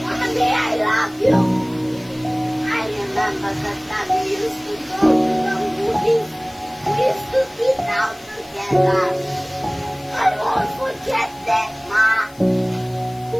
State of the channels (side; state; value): left; noise; hiss, 24 dB below the sound